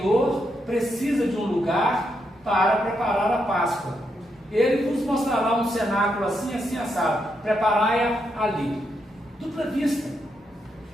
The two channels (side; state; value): both; normal; correlation 0.81